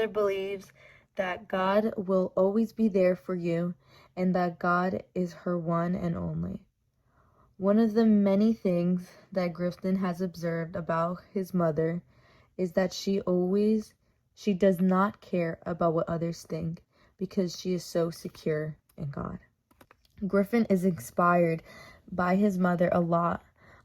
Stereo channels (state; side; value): identical; both; correlation 1.00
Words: believes that God will always be there for you and that God is her one and only. One of the many things that Griffin has observed about his mother is that she does not care about what others think because she is so secure in God. Griffin is inspired by his mother a lot